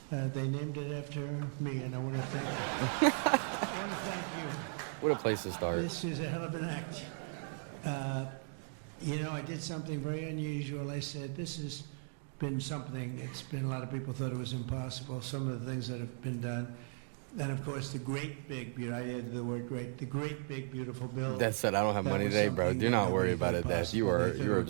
They named it after me, and I want to thank you. I want to thank you. What a place to start. This is a hell of an act. You know, I did something very unusual. I said, this has been something, it's been, a lot of people thought it was impossible, some of the things that have been done. And of course, the great big, I added the word great, the great big beautiful bill. That said, I don't have money today, bro. Do not worry about it, Dad. You're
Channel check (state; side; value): silent; left; 53 dB below the other